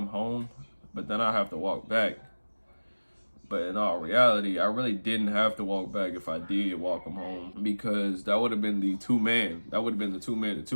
home? But then I have to walk back. But in all reality, I really didn't have to walk back if I did walk him home, because that would have been the 2-man. That would have been the 2-man, the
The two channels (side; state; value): both; inverted; correlation -1.00